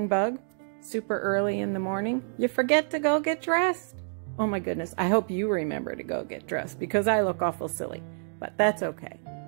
bug super early in the morning? You forget to go get dressed. Oh my goodness, I hope you remember to go get dressed because I look awful silly, but that's okay.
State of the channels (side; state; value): left; silent; 59 dB below the other